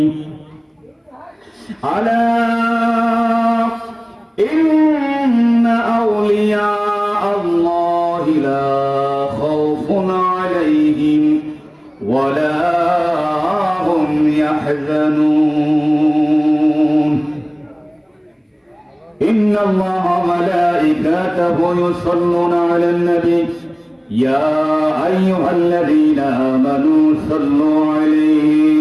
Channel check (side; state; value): both; identical; correlation 1.00